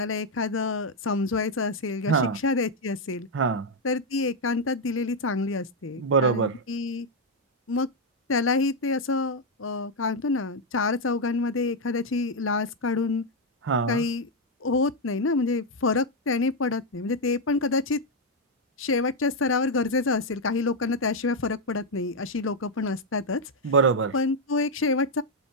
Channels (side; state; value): both; normal; correlation 0.02